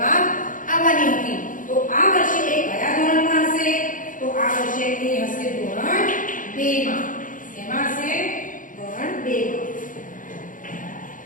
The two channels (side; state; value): right; late; 0.38 ms